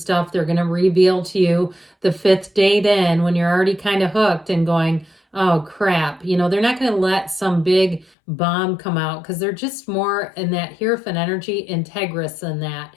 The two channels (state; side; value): drops out; right; at 8.1 s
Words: they're going to reveal to you the 5th date in when you're already kind of hooked and going, oh crap. You know, they're not going to let some big bomb come out, because they're just more in that Hierophant energy, integrous than that.